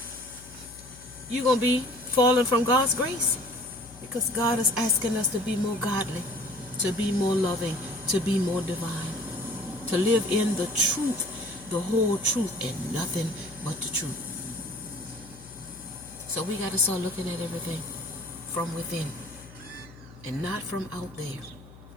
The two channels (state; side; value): noise; left; hum, 19 dB below the sound